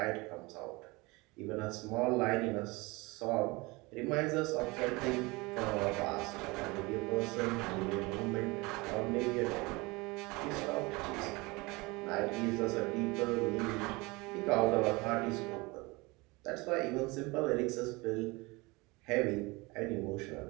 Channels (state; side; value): quieter; left; 24.3 dB